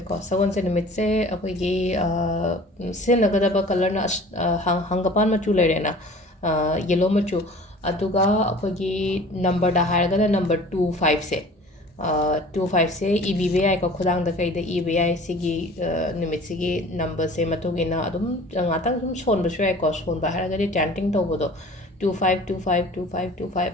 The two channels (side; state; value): both; normal; correlation 0.45